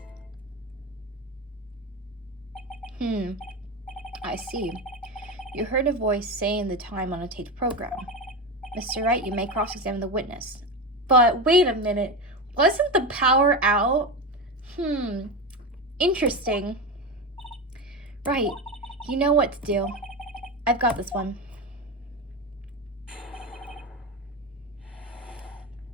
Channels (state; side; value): normal; both; correlation 0.19